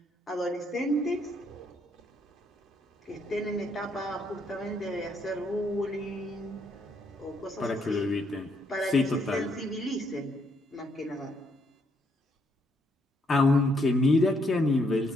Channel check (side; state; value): both; normal; correlation 0.73